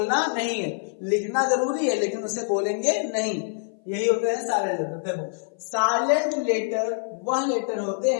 नहीं है, लिखना जरूरी है लेकिन उसे बोलेंगे नहीं। यही होते हैं साइलेंट लेटर। देखो, साइलेंट लेटर वह लेटर होते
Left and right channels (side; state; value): right; silent; 57 dB below the other